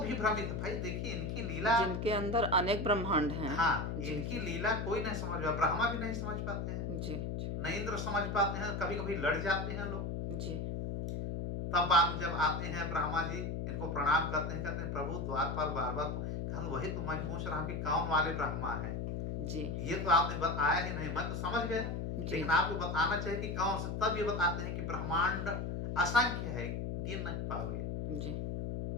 भ्रमित, भाई देखिए इनकी लीला, जिनके अंदर अनेक ब्रह्मांड हैं। हाँ, जी, इनकी जी। लीला कोई नहीं समझ पाता, ब्रह्मा भी नहीं समझ पाते हैं, जी न इंद्र समझ पाते हैं, कभी कभी लड़ जाते हैं लोग। जी तब बाद में जब आते हैं ब्रह्मा जी, इनको प्रणाम करते हैं, कहते हैं प्रभु द्वारपाल बार बार तो वही तो मैं पूछ रहा हूँ कि कौन वाले ब्रह्मा हैं। जी ये तो आपने बताया ही नहीं, मैं तो समझ गया, जी। लेकिन आपको बताना चाहिए कि कौन से। तब ये बताते हैं कि ब्रह्मांड असंख्य है, गिन नहीं पाओगे। जी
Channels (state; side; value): noise; left; hum, 3 dB below the sound